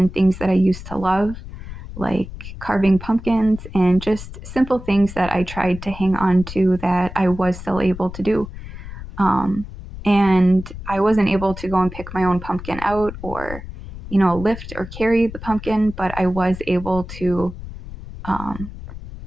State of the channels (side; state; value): left; noise; rumble, 12 dB below the sound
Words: things that I used to love, like carving pumpkins and just simple things that I tried to hang on to that I was still able to do. And I wasn't able to go and pick my own pumpkin out or, lift or carry the pumpkin, but I was able to